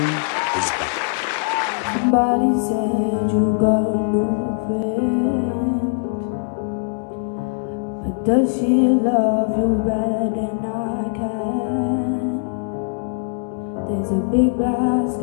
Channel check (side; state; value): right; silent; 65 dB below the other